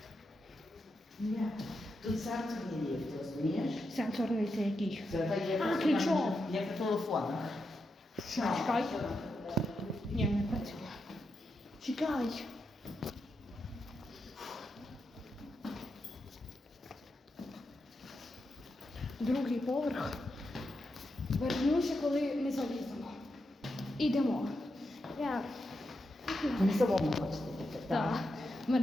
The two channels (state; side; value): normal; both; correlation 0.86